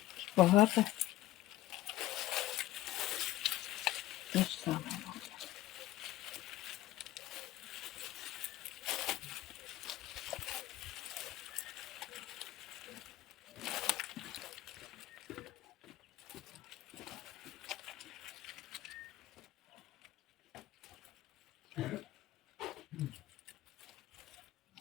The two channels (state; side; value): quieter; right; 15.7 dB